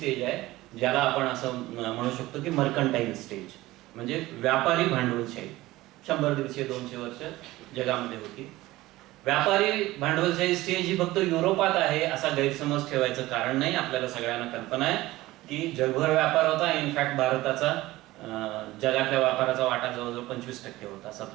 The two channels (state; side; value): quieter; left; 17.9 dB